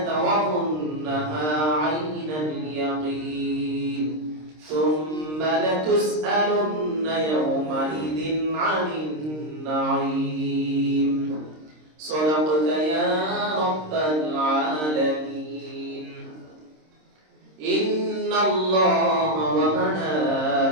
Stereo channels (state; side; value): late; left; 26 ms